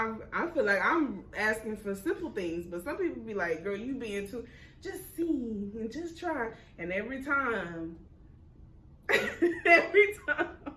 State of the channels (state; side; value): identical; both; correlation 1.00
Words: I feel like I'm asking for simple things, but some people be like, "Girl, you being too. Just see and just try." And every time